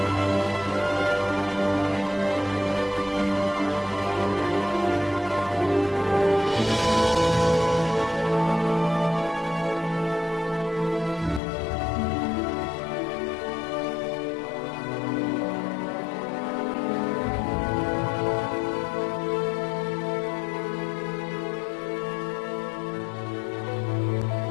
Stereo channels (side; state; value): right; drops out; at 11.4 s